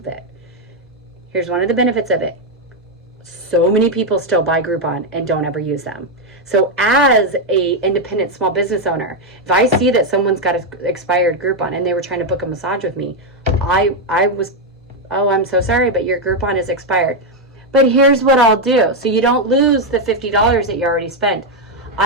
it. Here's one of the benefits of it. So many people still buy Groupon and don't ever use them. So as a independent small business owner, if I see that someone's got an expired Groupon and they were trying to book a massage with me, I was, oh, I'm so sorry, but your Groupon is expired. But here's what I'll do. So you don't lose the $50 that you already spent.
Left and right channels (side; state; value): both; normal; correlation 0.03